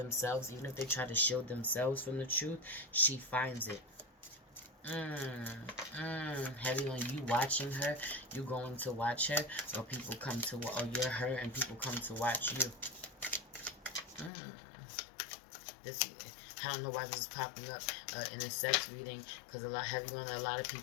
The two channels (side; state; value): right; drops out; at 14.3 s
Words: Even if they try to shield themselves from the truth, she finds it. Heavy on you watching her. You going to watch her, or people come to, or you're her and people come to watch you. This, I don't know why this is popping up in a sex reading, because a lot of